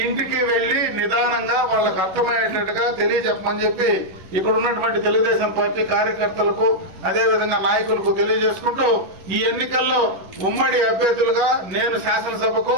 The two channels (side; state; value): left; late; 11 ms